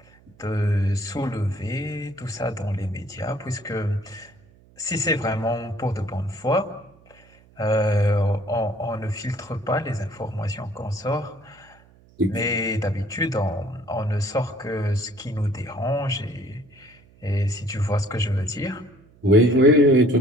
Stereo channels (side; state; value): right; noise; hum, 28 dB below the sound